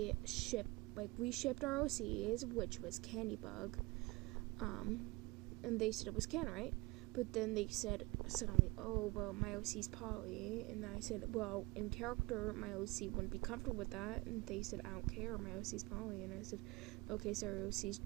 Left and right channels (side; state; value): left; quieter; 23.5 dB